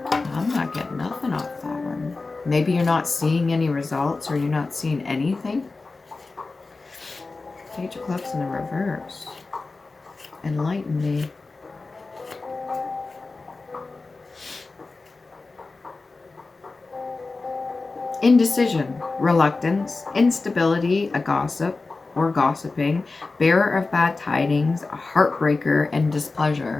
I'm not getting nothing off that one. Maybe you're not seeing any results, or you're not seeing anything. Page of Clubs in the reverse. Enlighten me. Indecision, reluctance, instability, a gossip or gossiping, bearer of bad tidings, a heartbreaker, and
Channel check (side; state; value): right; quieter; 3.7 dB